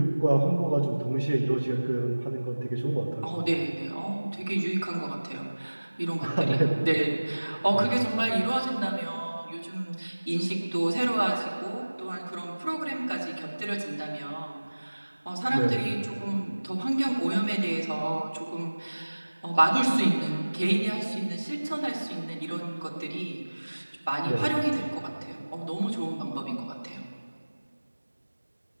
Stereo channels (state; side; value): inverted; both; correlation -1.00